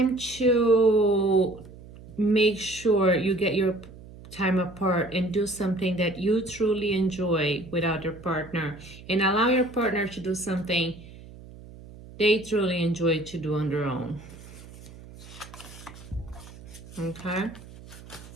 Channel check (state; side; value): noise; right; hum, 18 dB below the sound